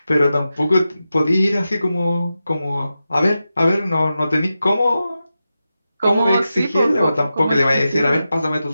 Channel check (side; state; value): both; inverted; correlation -0.91